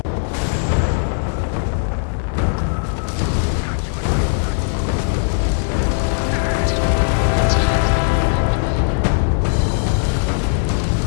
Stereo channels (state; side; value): silent; right; digital silence